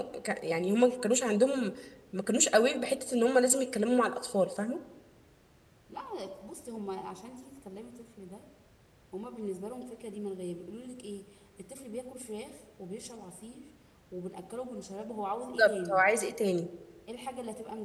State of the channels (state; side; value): identical; both; correlation 1.00